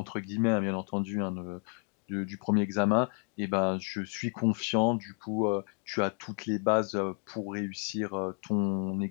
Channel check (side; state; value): right; quieter; 38.8 dB